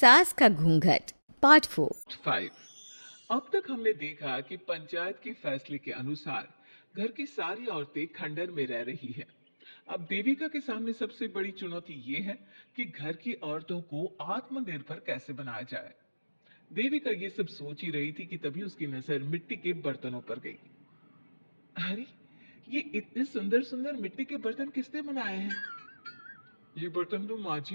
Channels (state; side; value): inverted; both; correlation -1.00